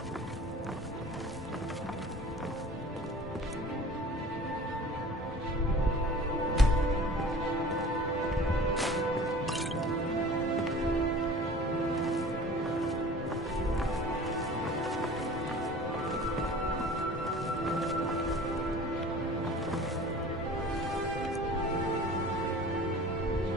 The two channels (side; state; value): both; normal; correlation 0.43